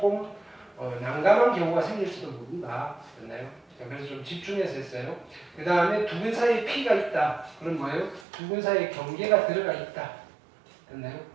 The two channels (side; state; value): left; drops out; at 8.2 s